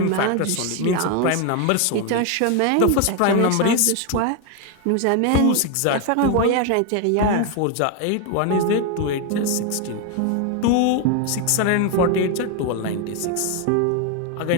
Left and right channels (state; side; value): different; both; correlation 0.01